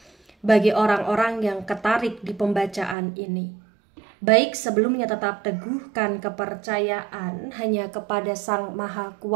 Bagi orang-orang yang ketarik di pembacaan ini, baik sebelumnya tetap teguhkan kepercayaan hanya kepada Sang Maha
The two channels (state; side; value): drops out; left; at 3.0 s